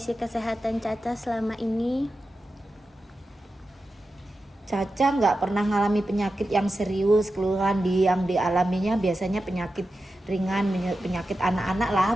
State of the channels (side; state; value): both; normal; correlation 0.91